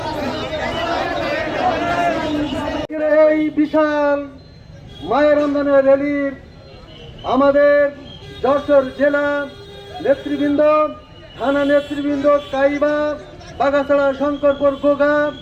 এই বিশাল মায়ের রমজানের র্যালির আমাদের যশোর জেলা নেতৃবৃন্দ, থানা নেতৃবৃন্দ, কাইবা, বাগাছড়া, শঙ্করপুর, গোগা,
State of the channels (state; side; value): identical; both; correlation 1.00